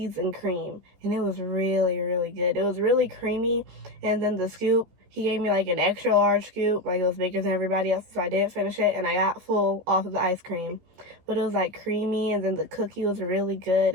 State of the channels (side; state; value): left; late; 14 ms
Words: and cream, and it was really, really good. It was really creamy. And then the scoop, he gave me like an extra large scoop, like it was bigger than everybody else, so I didn't finish it, and I got full off of the ice cream. But it was like creamy, and then the cookie was really good.